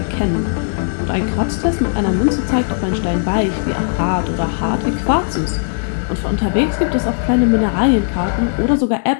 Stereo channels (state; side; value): silent; right; digital silence